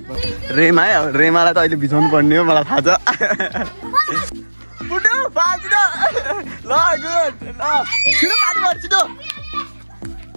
रेमा है अब रेमालाई त अहिले भिजाउनु पर्ने हो मलाई थाहा छ ल गुड ल छिटो पानी भर छिटो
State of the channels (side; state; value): both; inverted; correlation -1.00